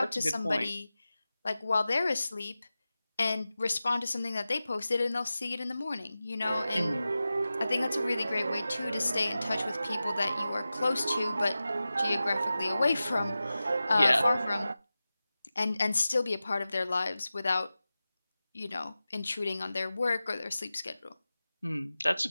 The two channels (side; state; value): both; inverted; correlation -0.95